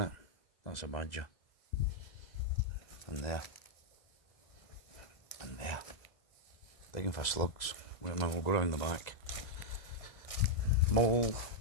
That's a badger. And there. And there. Digging for slugs. Wait a minute, we'll go around the back. Mole.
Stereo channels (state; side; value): late; right; 2.0 ms